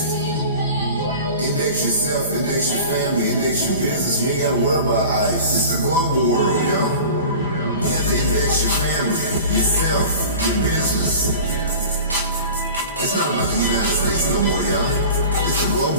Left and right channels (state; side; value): inverted; both; correlation -0.38